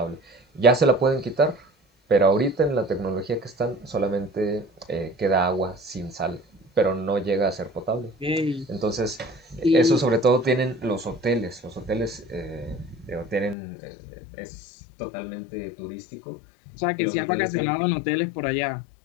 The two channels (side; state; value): right; drops out; at 13.6 s